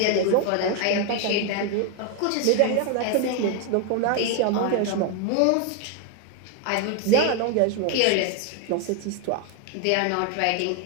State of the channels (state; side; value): different; both; correlation 0.01